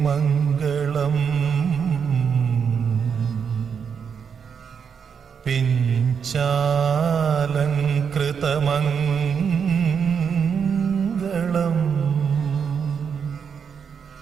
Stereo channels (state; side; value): quieter; left; 6.8 dB